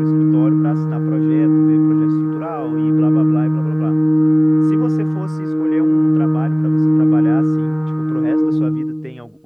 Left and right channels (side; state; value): both; identical; correlation 1.00